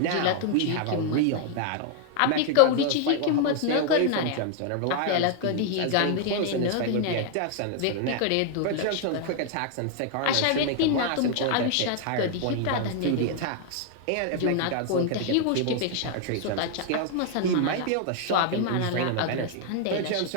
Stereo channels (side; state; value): both; different; correlation 0.00